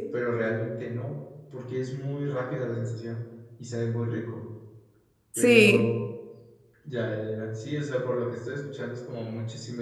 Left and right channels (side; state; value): both; identical; correlation 1.00